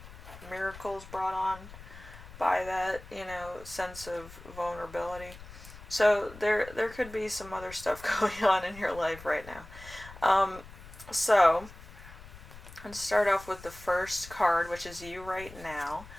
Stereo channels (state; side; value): noise; left; rumble, 17 dB below the sound